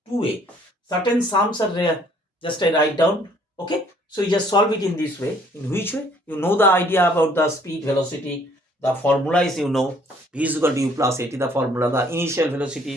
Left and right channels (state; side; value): normal; both; correlation 0.61